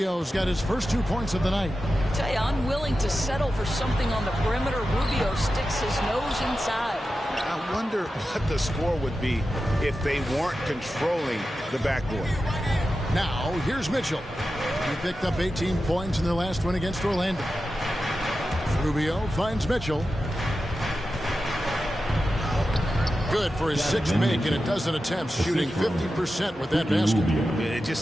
got his first 2 points of the night. I tell you, I'm willing to settle for something on the perimeter. Rubio sticks his nose inside. I wonder what the score would be if they weren't controlling the backboard. Now, here's Mitchell. He picked up 18 points in their last win against Orlando. Rubio finds Mitchell. good for his sixth make in a dozen attempts, shooting 50% with that basket. It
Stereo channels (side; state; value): both; normal; correlation 0.92